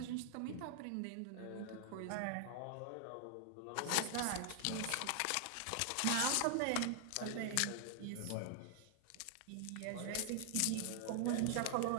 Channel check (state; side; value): different; both; correlation 0.00